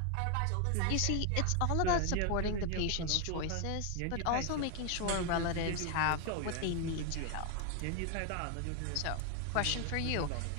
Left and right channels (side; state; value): both; different; correlation 0.01